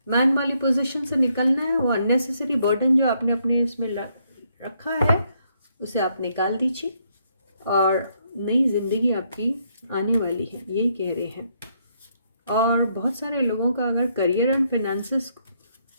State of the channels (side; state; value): both; inverted; correlation -0.74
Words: मैन वाली पोजीशन से निकलना है। वो अननेसेसरी बर्डन जो आपने अपने इसमें रखा है उसे आप निकाल दीजिए और नई ज़िंदगी आपकी आने वाली है, यही कह रहे हैं। और बहुत सारे लोगों का अगर करियर एंड फिनेंसेस